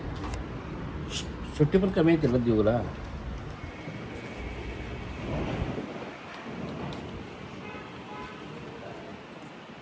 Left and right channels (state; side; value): identical; both; correlation 1.00